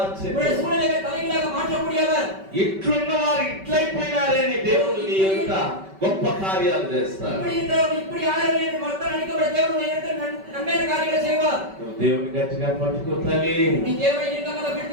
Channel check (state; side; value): late; left; 5.2 ms